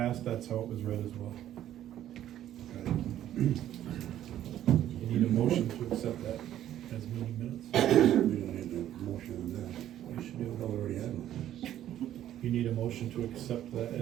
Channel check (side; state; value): left; quieter; 11.9 dB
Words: that's how it was read as well. You need a motion to accept that as meeting minutes. We don't need a motion on that. You should do We it. already had one. You need a motion to accept that